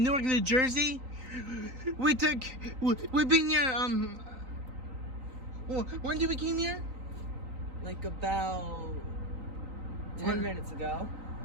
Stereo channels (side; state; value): left; late; 3.9 ms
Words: Newark, New Jersey. We've been here, when did we came here? Like about 10 minutes ago.